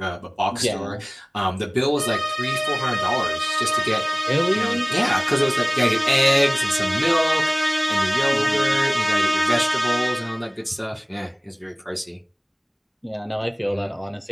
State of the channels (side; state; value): both; identical; correlation 1.00